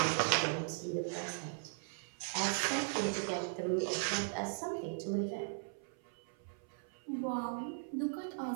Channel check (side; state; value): left; silent; 52 dB below the other